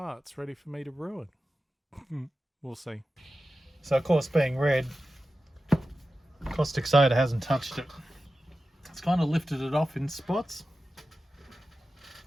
ready for me to ruin. We'll see. So of course, being red, caustic soda hasn't touched it. It's kind of lifted it off in spots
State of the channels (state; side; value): normal; both; correlation 0.93